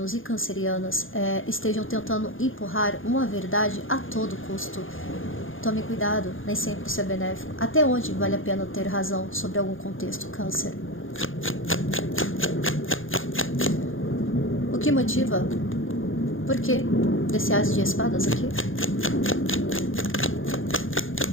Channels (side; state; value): right; late; 0.58 ms